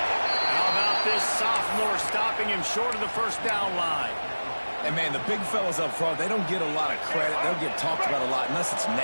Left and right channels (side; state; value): both; inverted; correlation -1.00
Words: about this sophomore stopping him short of the first down line? And, man, the big fellas up front, they don't get a lot of credit. They'll get talked about a lot unless it's